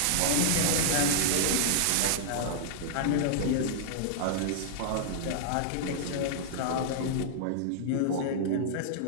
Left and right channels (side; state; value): both; different; correlation -0.01